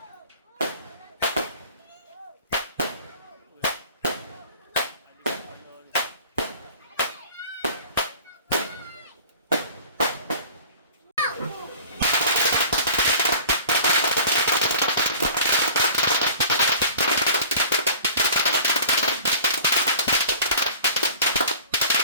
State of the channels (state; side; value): inverted; both; correlation -0.45